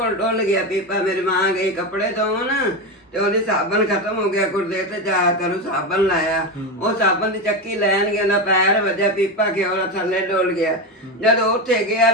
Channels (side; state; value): both; normal; correlation 0.16